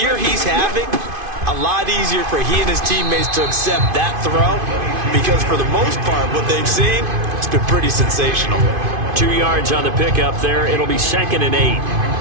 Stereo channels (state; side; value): late; left; 2.5 ms